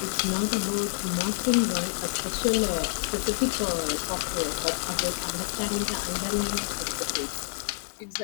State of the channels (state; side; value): silent; right; digital silence